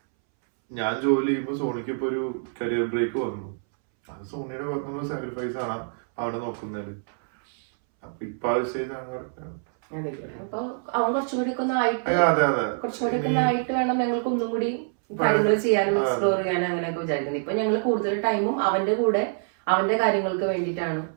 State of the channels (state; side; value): silent; left; 61 dB below the other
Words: ഞാൻ ജോലി ചെയ്യുമ്പോൾ സോണിക്ക് ഇപ്പൊ ഒരു കരിയർ ബ്രേക്ക് വന്നു. അത് സോണിയുടെ ഭാഗത്തുനിന്നുള്ള സാക്രിഫൈസ് ആണ് അവിടെ നോക്കുന്നത്. അപ്പൊ ഇപ്പൊ ആ ഒരു സ്റ്റേജ് ആണ് കറക്റ്റ്. അപ്പൊ അവൻ കുറച്ചുകൂടി ആയിട്ട് വേണം ഞങ്ങൾക്ക് ഒന്നും കൂടി കാര്യങ്ങൾ ചെയ്യാനും എക്സ്പ്ലോർ ചെയ്യാനും അങ്ങനെയൊക്കെ വിചാരിക്കുന്നത്. ഇപ്പൊ ഞങ്ങൾ കൂടുതൽ ടൈമും അവന്റെ കൂടെ അവന്റെ കാര്യങ്ങൾക്ക് വേണ്ടിയിട്ടാണ്